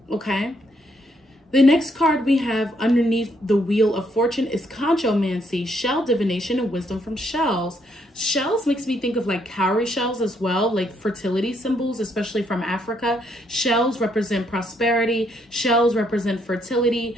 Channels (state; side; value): normal; both; correlation 0.73